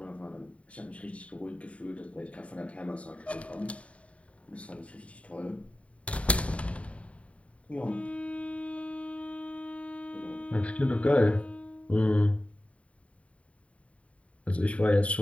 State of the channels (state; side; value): late; right; 0.064 ms